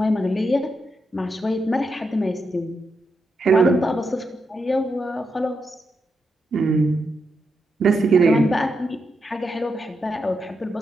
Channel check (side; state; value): both; normal; correlation 0.84